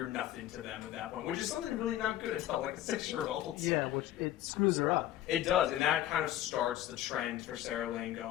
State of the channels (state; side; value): quieter; right; 13.0 dB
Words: nothing to them at that point, which is something really not good to tell like a 6-year-old. Yeah, which it screws her up. It does, and that kind of starts the trend for Sarah Lynn